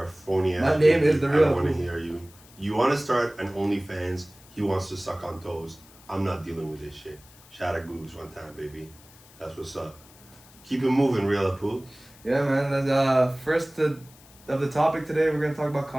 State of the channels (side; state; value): left; noise; hiss, 24 dB below the sound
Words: a phony ass. My name is the real. I don't want to hear you. You want to start an OnlyFans. He wants to suck on toes. I'm not dealing with this shit. Shout out Goog's one time, baby. That's what's up. Keep it moving, Real Apu. Yeah, man. That's, first of the topic today, we're gonna talk about